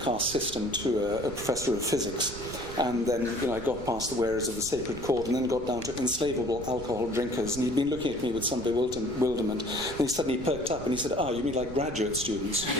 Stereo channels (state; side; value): noise; right; rumble, 12 dB below the sound